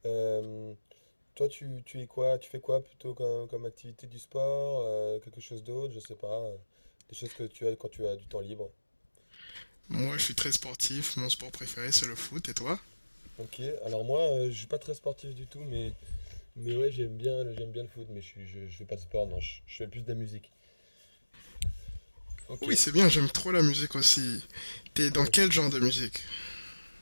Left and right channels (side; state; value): both; inverted; correlation -1.00